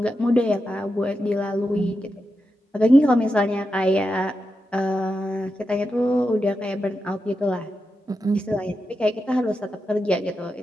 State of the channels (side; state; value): both; normal; correlation 0.88